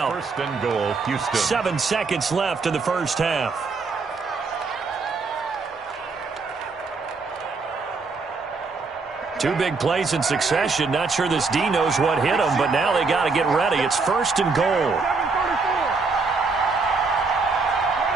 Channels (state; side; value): quieter; left; 4.3 dB